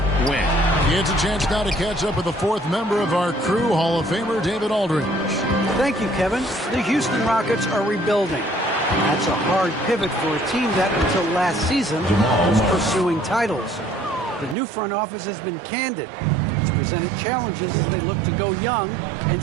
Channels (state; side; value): drops out; left; at 14.6 s